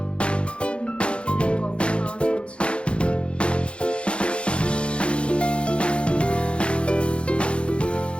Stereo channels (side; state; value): right; late; 0.058 ms